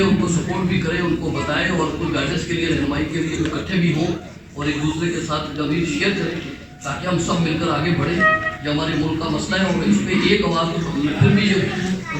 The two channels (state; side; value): identical; both; correlation 1.00